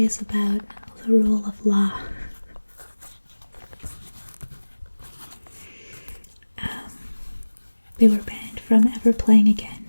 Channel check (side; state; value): both; inverted; correlation -1.00